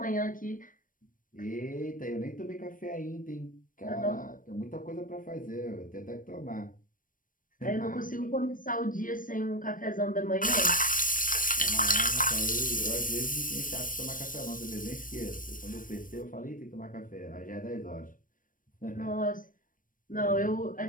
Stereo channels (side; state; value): right; late; 0.40 ms